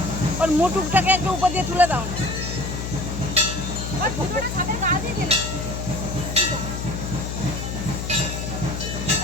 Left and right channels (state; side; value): noise; left; hum, 5 dB below the sound